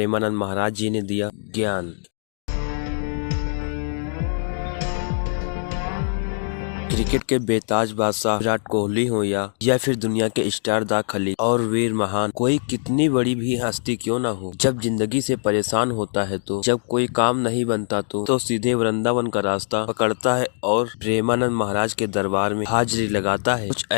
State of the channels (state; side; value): silent; right; digital silence